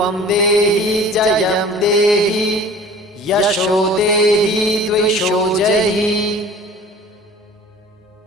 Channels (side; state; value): both; normal; correlation 0.45